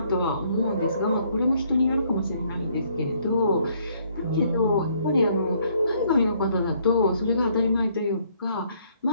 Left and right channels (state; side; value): inverted; both; correlation -0.67